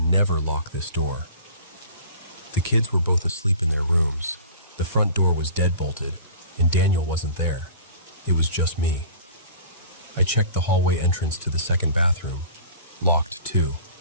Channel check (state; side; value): inverted; both; correlation -0.43